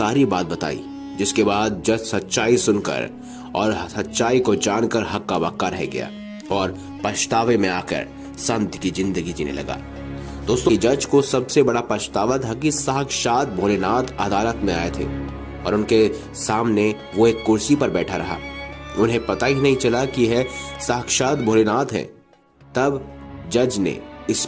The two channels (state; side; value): identical; both; correlation 1.00